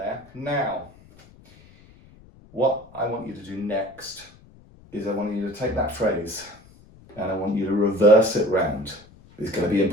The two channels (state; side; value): noise; left; rumble, 25 dB below the sound